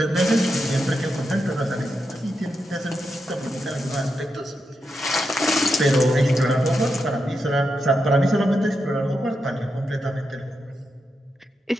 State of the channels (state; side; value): normal; both; correlation 0.86